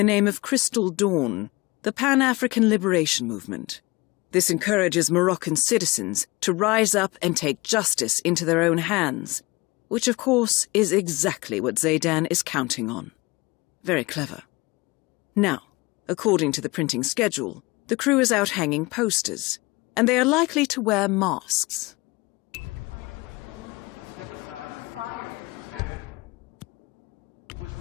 name of Crystal Dawn, the Pan-African Liberation Movement. This encourages Moroccan citizens to rise up and take justice into their own hands, which of course is exactly what Zaydan is counting on. Very clever. Now, according to the printing schedule, the crew is out hanging posters, and they are likely to wear masks. Now step aside, citizen. Mrs. Step.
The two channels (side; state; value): right; quieter; 23.2 dB